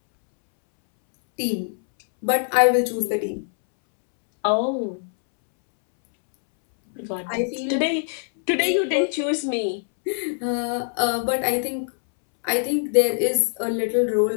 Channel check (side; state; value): right; silent; 63 dB below the other